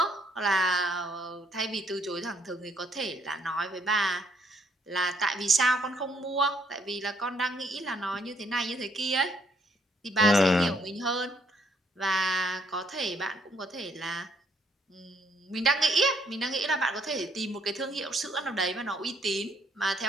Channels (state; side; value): normal; both; correlation 0.69